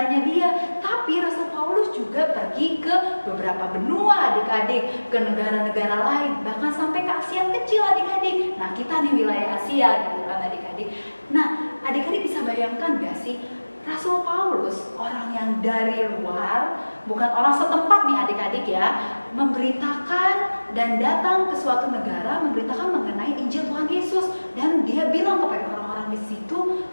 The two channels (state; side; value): inverted; both; correlation -1.00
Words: dia, tapi Rasul Paulus juga pergi ke beberapa benua, adik-adik, ke negara-negara lain, bahkan sampai ke Asia kecil, adik-adik. Nah, kita di wilayah Asia gitu kan, adik-adik. Nah, adik-adik bisa bayangkan gak sih, Rasul Paulus, orang yang dari luar, bukan orang setempat nih adik-adik ya, memberitakan dan datang ke suatu negara memberitakan mengenai Injil Tuhan Yesus, dan dia bilang kepada orang-orang di situ,